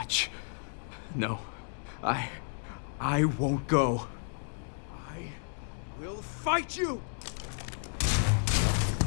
No, I won't go. I will fight you!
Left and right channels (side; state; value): right; silent; digital silence